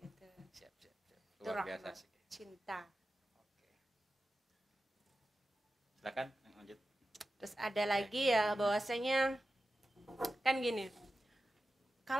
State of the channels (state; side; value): normal; both; correlation 0.93